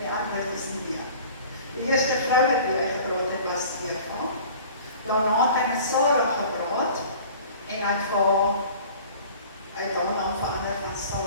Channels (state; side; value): inverted; both; correlation -0.45